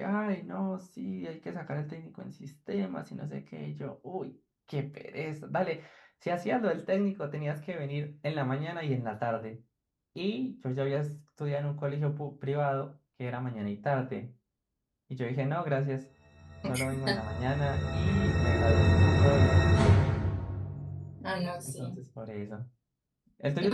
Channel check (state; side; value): identical; both; correlation 1.00